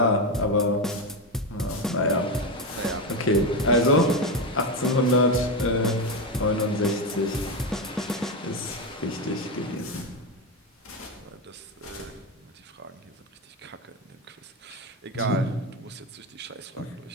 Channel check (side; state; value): both; normal; correlation 0.13